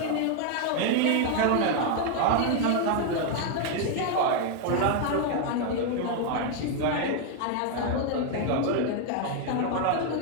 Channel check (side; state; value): both; different; correlation 0.01